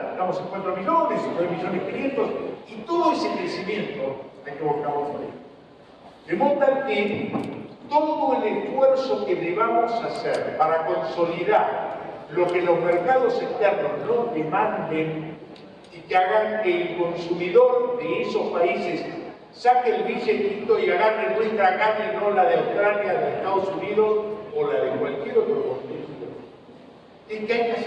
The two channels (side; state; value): both; identical; correlation 1.00